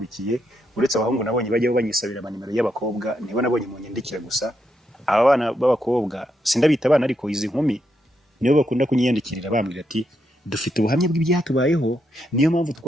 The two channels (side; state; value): both; normal; correlation 0.81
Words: uretse abahungu nabonye bajyaho banyisabira amanimero y'abakobwa, nibo nabonye mu nyandikira gusa. Aba bana b'abakobwa sindabita abana, ariko izi nkumi nibo bakunda kunyiyandikirira bambwira ati dufite ubuhamya bw'ibyatubayeho, niyo mpamvu